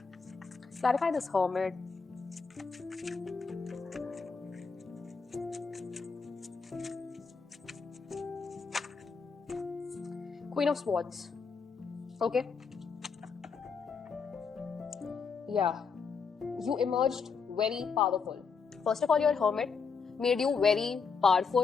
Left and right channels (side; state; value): right; quieter; 5.4 dB